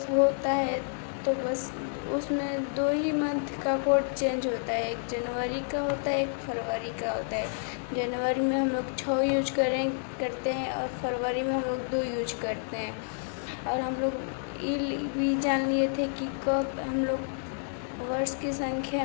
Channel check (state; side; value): silent; right; digital silence